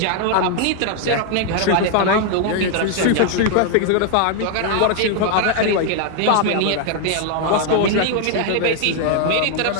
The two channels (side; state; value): both; different; correlation 0.00